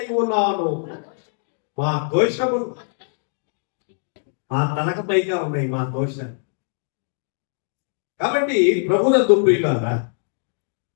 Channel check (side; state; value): right; silent; digital silence